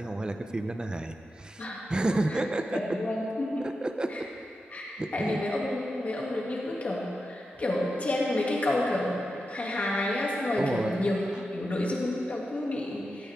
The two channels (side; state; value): both; normal; correlation 0.89